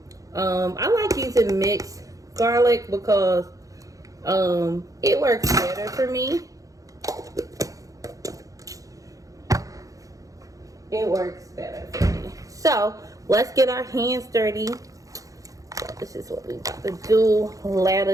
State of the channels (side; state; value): left; late; 0.17 ms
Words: I like using mixed garlic because it works better for me. It works better for me. So let's get our hands dirty. So this is what we about to do.